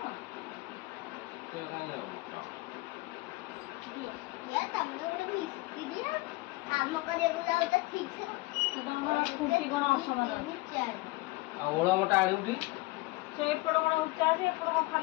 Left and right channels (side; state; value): right; quieter; 21.8 dB